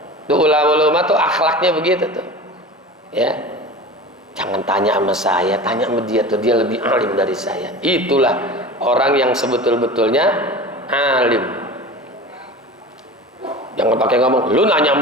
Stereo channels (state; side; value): normal; both; correlation 0.34